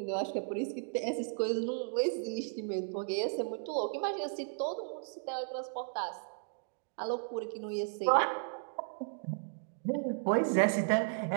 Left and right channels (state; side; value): silent; left; digital silence